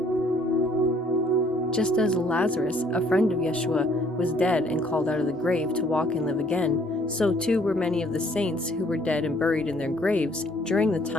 Just as Lazarus, a friend of Yeshua, was dead and called out of the grave to walk and live again, so too were many of the saints who were dead and buried in their graves during the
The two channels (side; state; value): both; normal; correlation 0.62